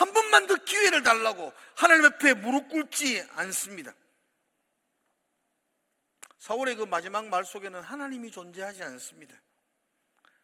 번만 더 기회를 달라고 하나님 앞에 무릎 꿇지 않습니다. 사울의 그 마지막 말 속에는 하나님이 존재하지 않습니다.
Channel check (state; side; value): identical; both; correlation 1.00